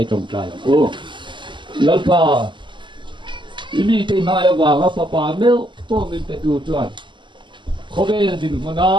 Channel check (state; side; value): late; left; 0.23 ms